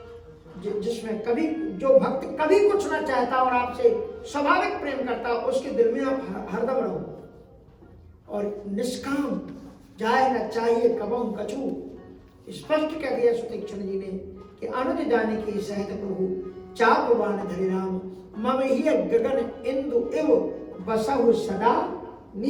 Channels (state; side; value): identical; both; correlation 1.00